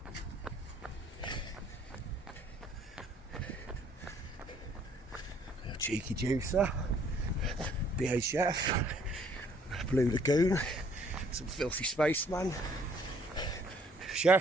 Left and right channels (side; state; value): both; normal; correlation 0.62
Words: A cheeky juicer. BHF. Blue Lagoon. Some filthy spaceman.